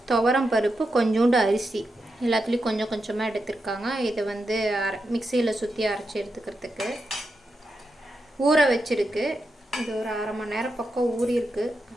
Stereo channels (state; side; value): normal; both; correlation 0.87